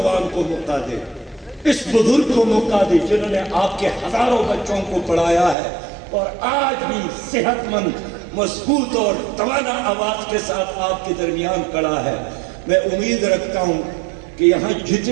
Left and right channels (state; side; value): drops out; left; at 5.6 s